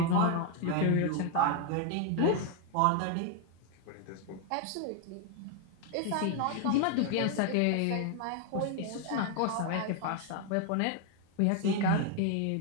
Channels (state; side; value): different; both; correlation 0.01